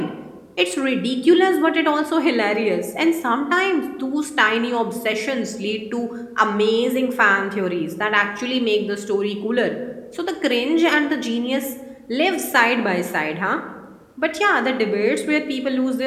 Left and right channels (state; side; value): identical; both; correlation 1.00